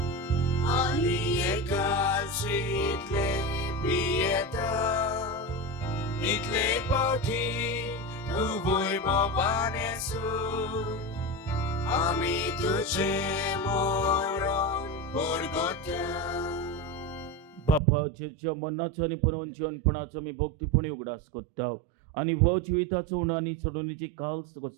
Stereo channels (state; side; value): drops out; left; at 17.8 s